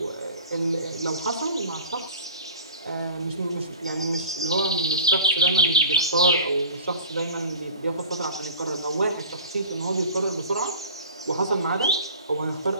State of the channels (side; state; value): both; inverted; correlation -0.39